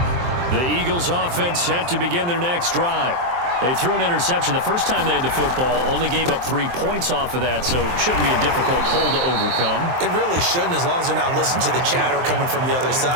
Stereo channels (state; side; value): late; left; 23 ms